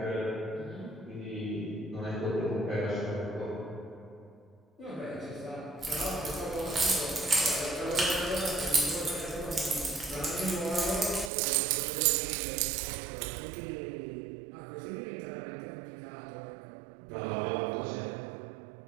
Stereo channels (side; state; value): left; drops out; at 11.3 s